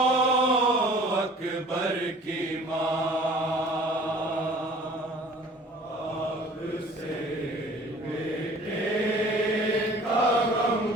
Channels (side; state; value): both; normal; correlation 0.49